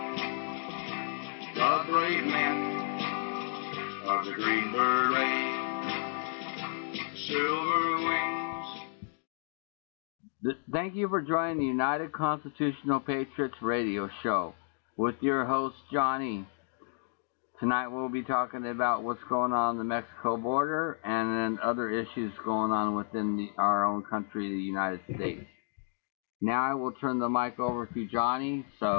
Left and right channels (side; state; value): right; silent; 57 dB below the other